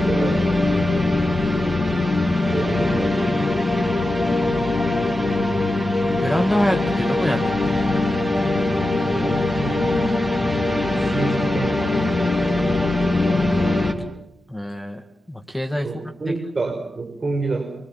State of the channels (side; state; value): both; normal; correlation 0.91